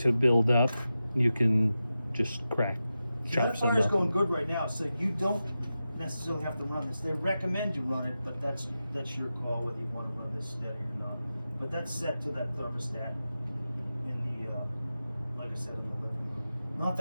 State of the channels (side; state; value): both; inverted; correlation -0.92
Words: build up, you can just chop That some fire's up. going good right now, so you don't necessarily have to run this. They recommend you run it, but that's your call whether you want to run this steady or not. But that's set to that thermostat in the, like I said, in the living room. Not